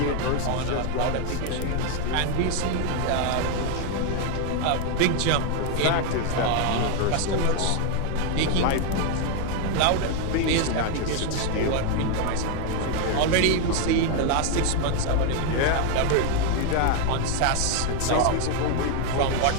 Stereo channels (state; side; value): different; both; correlation 0.01